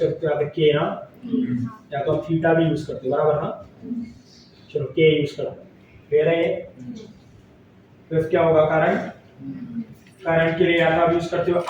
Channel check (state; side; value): identical; both; correlation 1.00